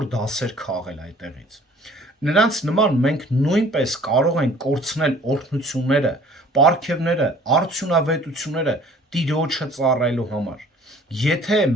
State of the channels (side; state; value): both; normal; correlation 0.52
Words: դասեր քաղել այդտեղից։ Նրանց նման մենք նույնպես կարող ենք կորցնել օրհնությունները, պարգևները, արդյունավետությունները Տիրոջը ծառայելու համար։ Եթե